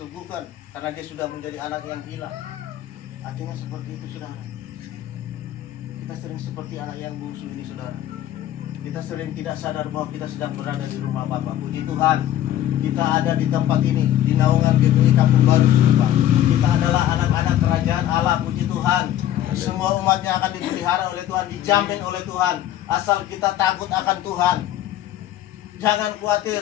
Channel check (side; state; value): right; quieter; 12.3 dB